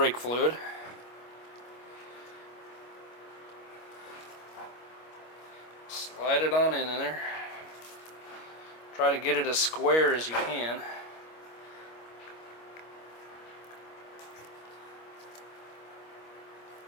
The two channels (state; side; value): late; right; 25 ms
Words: fluid. Slide it on in there. Try to get it as square as you can.